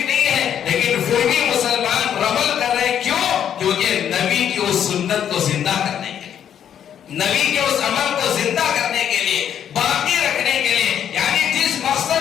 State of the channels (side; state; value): right; quieter; 9.3 dB